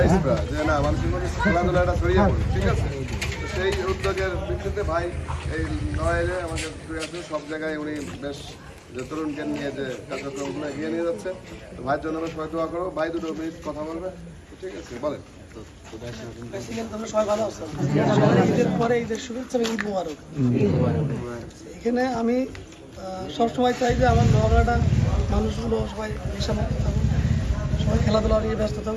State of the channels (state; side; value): identical; both; correlation 1.00